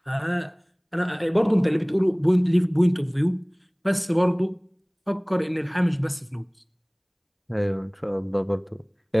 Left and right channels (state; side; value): identical; both; correlation 1.00